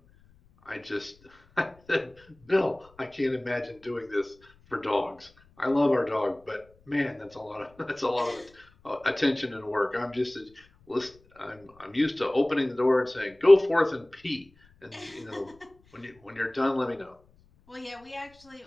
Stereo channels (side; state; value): left; noise; rumble, 30 dB below the sound